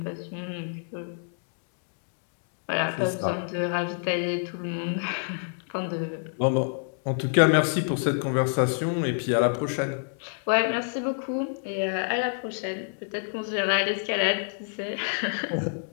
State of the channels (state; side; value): silent; right; digital silence